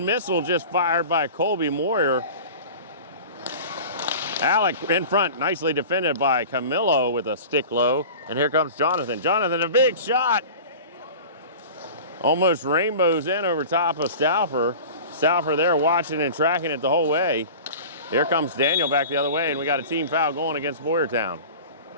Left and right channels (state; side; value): inverted; both; correlation -0.37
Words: just fired by Colby Moyer. Alec in front, nicely defended by Camillo with a stick low. And here comes Jonathan. Jonathan, a big shot. Almost rainbows in over top of Stauffer. Stauffer there watching and tracking it the whole way. Here comes Daniel back the other way, and we got a team foul going against Boyertown.